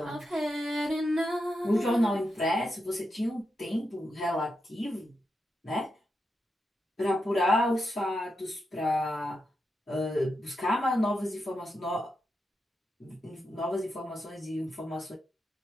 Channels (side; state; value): both; normal; correlation 0.86